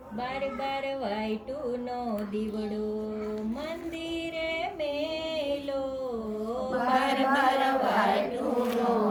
બાર બાર વાઈટુનો દીવડો મંદિરે મેલો, બાર બાર વાઈટુનો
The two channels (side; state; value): both; identical; correlation 1.00